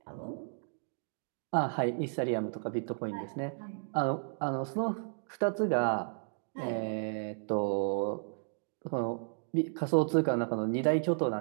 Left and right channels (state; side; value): silent; left; digital silence